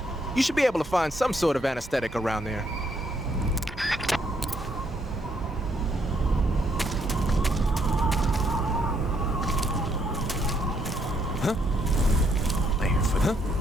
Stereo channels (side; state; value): both; normal; correlation 0.72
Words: You should be able to find some sort of anesthetic around there.